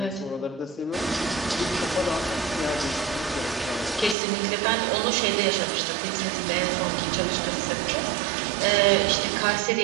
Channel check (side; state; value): left; drops out; at 4.2 s